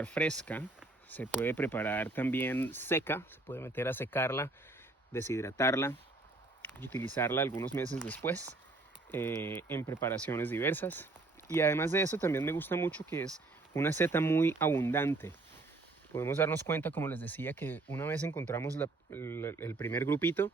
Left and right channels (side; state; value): left; quieter; 3.1 dB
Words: fresca, se puede preparar también seca, se puede meter a secarla, deshidratarla y utilizarla algunos meses después en preparaciones diversas. Y además de eso también me gusta mucho que es una seta muy abundante. Podemos darnos cuenta, como les decía, que una vez encontramos el primer grupito,